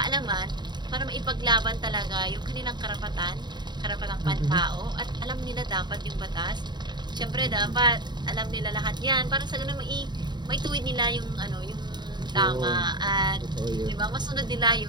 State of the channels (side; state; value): left; late; 0.21 ms